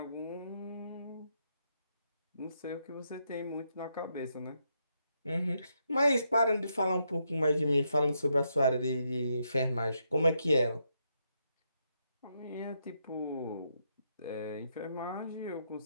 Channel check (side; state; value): both; inverted; correlation -0.79